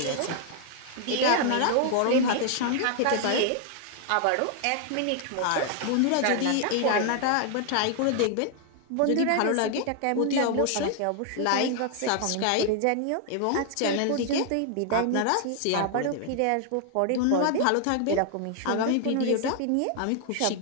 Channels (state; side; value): different; both; correlation 0.00